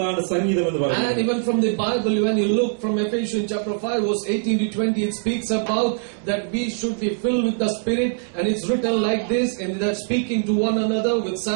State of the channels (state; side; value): silent; left; 61 dB below the other